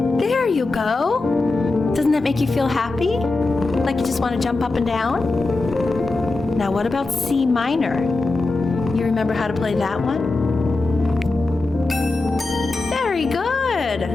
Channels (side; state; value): right; quieter; 3.3 dB